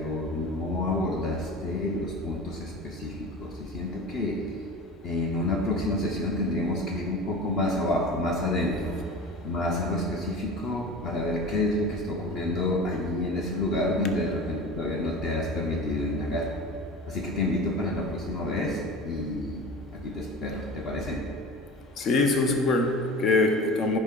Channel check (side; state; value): both; normal; correlation 0.35